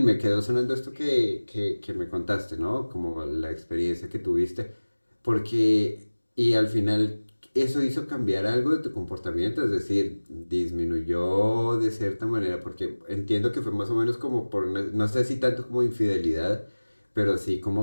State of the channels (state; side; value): inverted; both; correlation -1.00